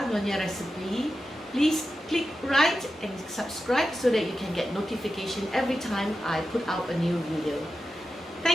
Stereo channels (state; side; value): normal; both; correlation 0.91